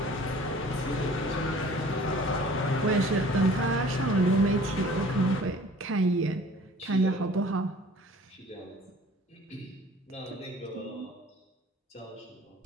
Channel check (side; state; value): both; normal; correlation 0.49